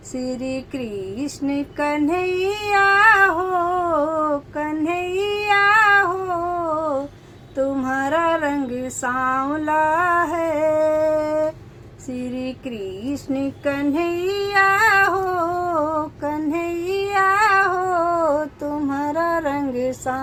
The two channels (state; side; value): identical; both; correlation 1.00